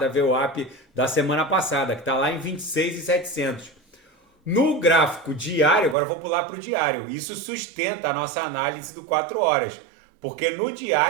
VWAP da semana passada, que está lá em 26.700. No gráfico diário, agora eu vou pular para o diário, isso sustenta a nossa análise do 4 horas, porque no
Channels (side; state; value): left; drops out; at 6.0 s